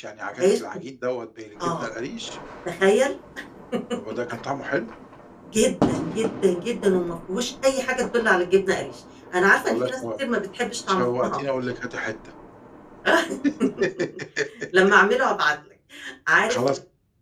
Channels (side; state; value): both; identical; correlation 1.00